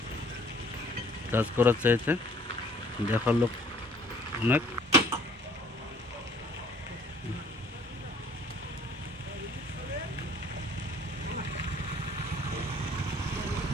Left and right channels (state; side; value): normal; both; correlation 0.56